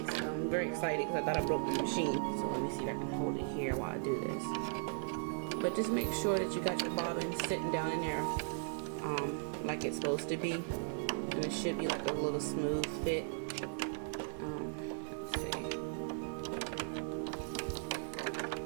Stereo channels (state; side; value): silent; left; 53 dB below the other